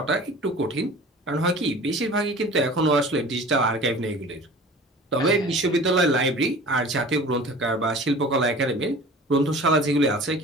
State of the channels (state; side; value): normal; both; correlation 0.42